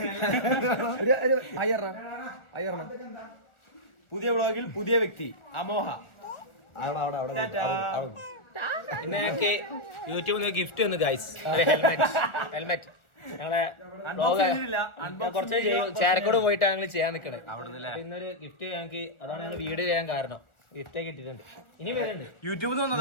പുതിയ വ്ളോഗിൽ പുതിയ വ്യക്തി അമോഹ. പിന്നെ ഞങ്ങൾക്ക് യൂട്യൂബിൽ നിന്ന് ഗിഫ്റ്റ് വന്നു ഗൈസ്. ഹെൽമെറ്റ് ഞങ്ങളെ കുറച്ച് ചേരക്കോട് പോയിട്ടാണ് ഞങ്ങൾ ചെയ്യാൻ നിൽക്കണേ. ഇന്നൊരു ഗിഫ്റ്റ് ഞങ്ങൾക്ക്, അതാണ് ഞങ്ങൾ വീഡിയോ ചെയ്യാൻ കാരണം. ഗിഫ്റ്റ് കിട്ടിയിട്ടുണ്ട്. ഇനി വരുന്നുണ്ട് യൂട്യൂബിൽ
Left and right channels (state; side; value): late; right; 1.4 ms